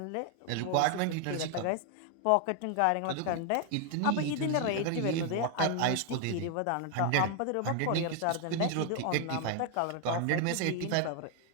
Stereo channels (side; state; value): both; different; correlation 0.00